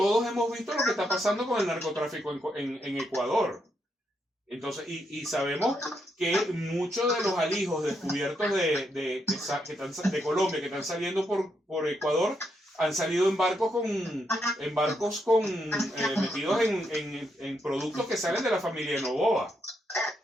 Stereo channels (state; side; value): normal; both; correlation 0.79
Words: hemos visto lo que está pasando con el narcotráfico en Ecuador. Entonces, y sabemos que muchos de los alijos descubiertos de Colombia que están saliendo por Ecuador han salido en barcos metidos en productos que salen de la familia de Noboa.